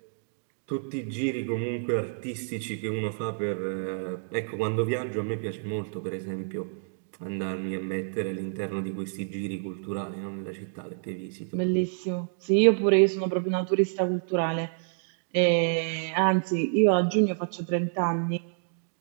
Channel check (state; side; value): silent; left; digital silence